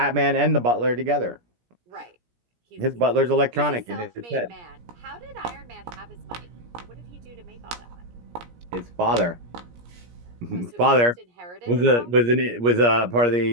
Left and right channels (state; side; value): late; left; 17 ms